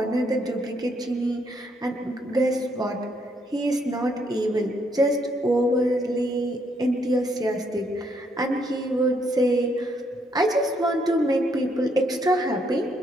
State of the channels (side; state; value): both; normal; correlation 0.73